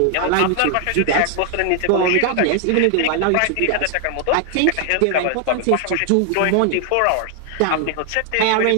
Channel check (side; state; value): both; different; correlation 0.00